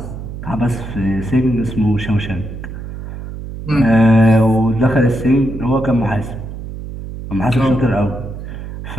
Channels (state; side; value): noise; right; hum, 9 dB below the sound